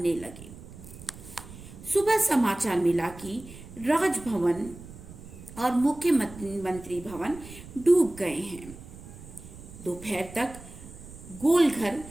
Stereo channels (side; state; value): right; noise; rumble, 16 dB below the sound